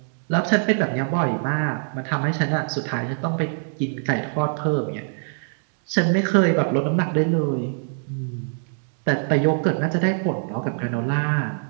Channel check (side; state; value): left; silent; digital silence